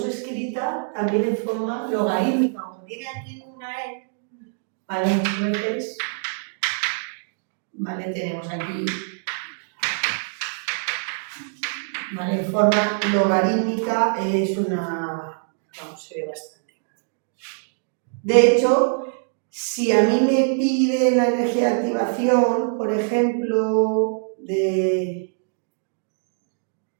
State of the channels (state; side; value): silent; left; digital silence